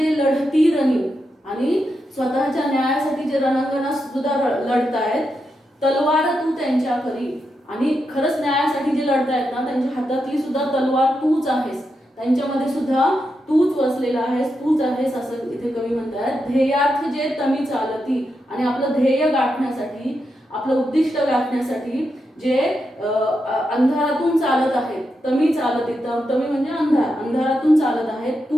लढती रणी, आणि स्वतःच्या न्यायासाठी जे रणांगणात सुद्धा लढतायत, तलवार तू त्यांच्या करी, आणि खरंच न्यायासाठी जे लढतायत ना, त्यांच्या हातातली सुद्धा तलवार तूच आहेस, त्यांच्यामध्ये सुद्धा तूच वसलेला आहेस, तूच आहेस, असं इथे कवी म्हणतात. ध्येयार्थ जे तमी चालती, आणि आपलं ध्येय गाठण्यासाठी आपलं उद्दिष्ट गाठण्यासाठी जे अंधारातून चालत आहेत, तमी चालत येतं, तमी म्हणजे अंधारातून चालत आहेत,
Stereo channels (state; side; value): normal; both; correlation 0.85